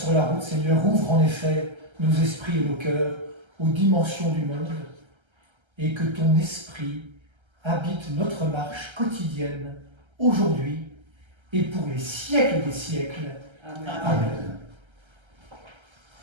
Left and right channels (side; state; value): left; late; 1.3 ms